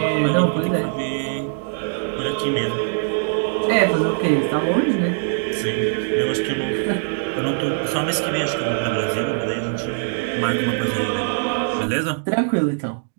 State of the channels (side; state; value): left; silent; digital silence